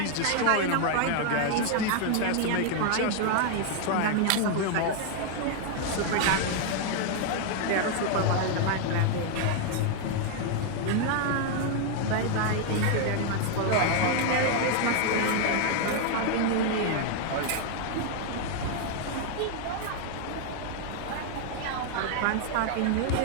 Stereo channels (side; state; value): both; different; correlation 0.00